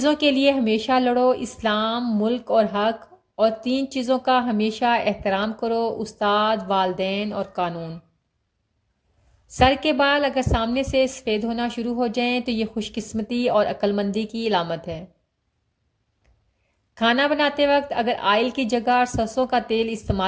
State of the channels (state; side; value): identical; both; correlation 1.00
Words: کے لیے ہمیشہ لڑو، اسلام، ملک اور حق، اور 3 چیزوں کا ہمیشہ احترام کرو، استاد، والدین اور قانون۔ سر کے بال اگر سامنے سے سفید ہونا شروع ہو جائیں تو یہ خوش قسمتی اور عقل مندی کی علامت ہے۔ کھانا بناتے وقت اگر آئل کی جگہ سرسوں کا تیل